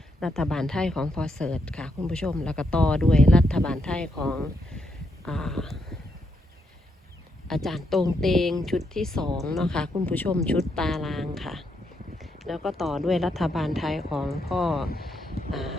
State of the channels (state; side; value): normal; both; correlation 0.79